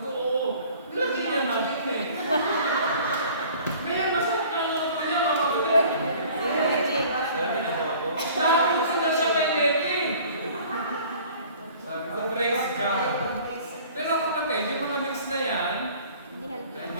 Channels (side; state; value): both; inverted; correlation -0.49